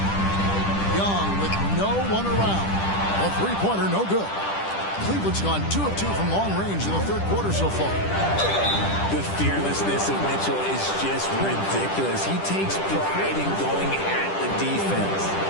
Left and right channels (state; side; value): late; right; 10 ms